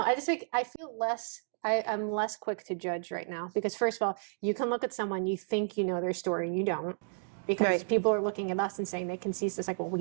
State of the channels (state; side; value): silent; left; digital silence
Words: I just think I feel less. I'm less quick to judge right now because, first of all, you can look at someone, you think you know their story, and you don't. Because people are looking at us and saying they can see this, like, well, we